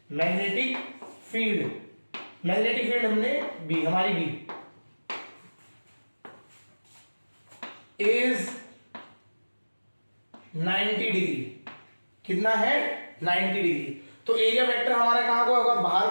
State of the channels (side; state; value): both; inverted; correlation -1.00